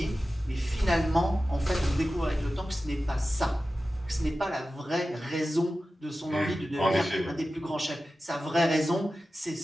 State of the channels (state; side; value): normal; both; correlation 0.94